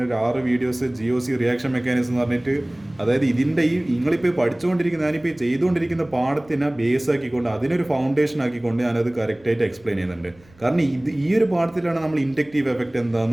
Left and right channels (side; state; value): right; noise; rumble, 27 dB below the sound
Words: ഒരു 6 വീഡിയോസ് GOC റിയാക്ഷൻ മെക്കാനിസം എന്ന് പറഞ്ഞിട്ട്, അതായത് ഇതിൻ്റെ നിങ്ങളിപ്പോൾ പഠിച്ചുകൊണ്ടിരിക്കുന്ന ഞാനിപ്പോൾ ചെയ്തുകൊണ്ടിരിക്കുന്ന പാഠത്തിനെ ബേസ് ആക്കിക്കൊണ്ട് അതിനൊരു ഫൗണ്ടേഷൻ ആക്കിക്കൊണ്ട് ഞാനത് കറക്റ്റായിട്ട് എക്സ്പ്ലെയിൻ ചെയ്യുന്നുണ്ട്. കാരണം ഈ ഒരു പാഠത്തിലാണ് നമ്മൾ ഇൻഡക്റ്റീവ് എഫക്റ്റ്